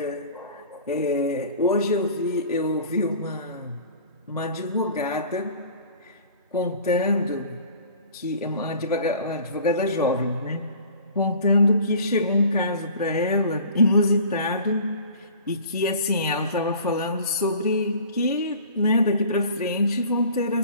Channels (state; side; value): inverted; both; correlation -0.45